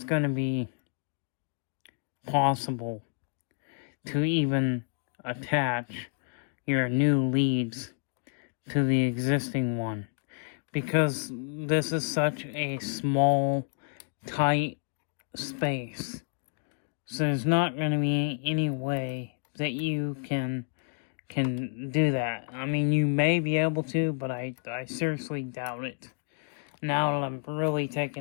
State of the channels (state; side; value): silent; right; 58 dB below the other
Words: going to be possible to even attach your new leads to the existing one, because this is such a small, tight space. So there's not going to be any way that you can do that. I mean, you may be able to, but I seriously doubt it. Now that I'm really